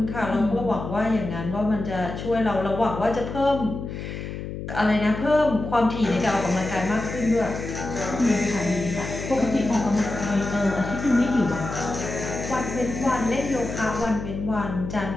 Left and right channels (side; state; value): left; noise; hum, 7 dB below the sound